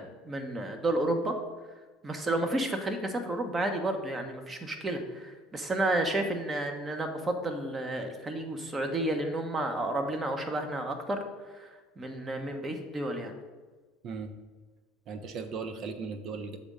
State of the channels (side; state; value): both; normal; correlation 0.65